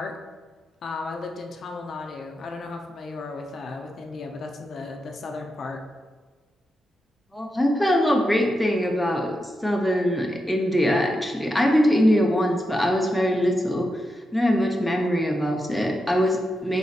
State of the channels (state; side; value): normal; both; correlation 0.87